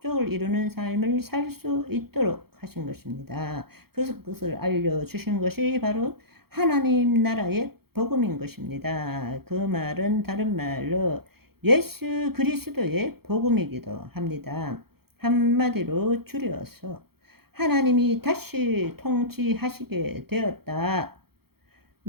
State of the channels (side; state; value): left; late; 0.95 ms